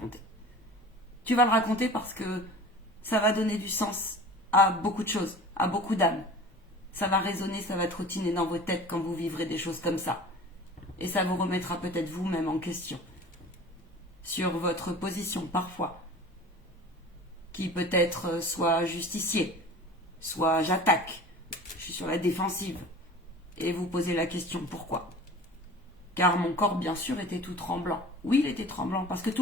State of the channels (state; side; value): normal; both; correlation 0.40